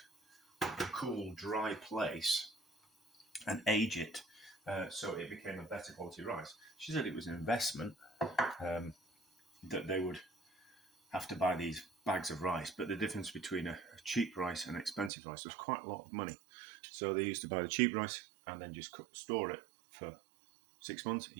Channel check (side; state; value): left; drops out; at 15.1 s